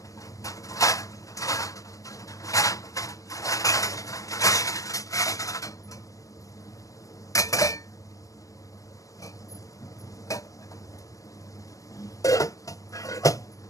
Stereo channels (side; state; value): right; late; 0.16 ms